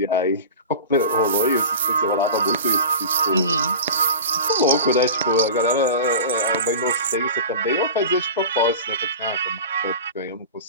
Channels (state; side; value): inverted; both; correlation -0.33